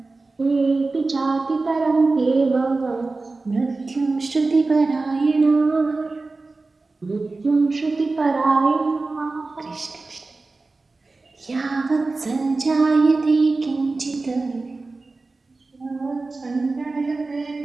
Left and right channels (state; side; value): quieter; left; 3.6 dB